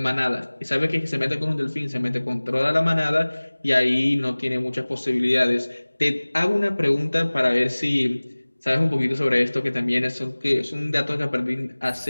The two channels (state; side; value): inverted; both; correlation -1.00